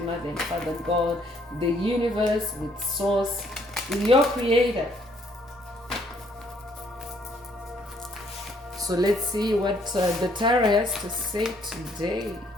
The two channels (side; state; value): both; normal; correlation 0.66